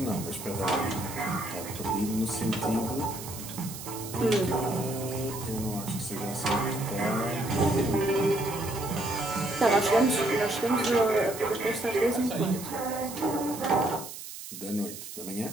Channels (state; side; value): noise; right; hiss, 11 dB below the sound